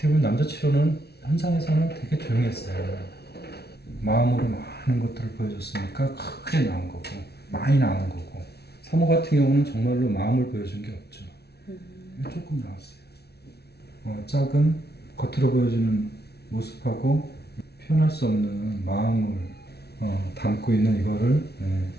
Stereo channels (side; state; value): right; late; 0.48 ms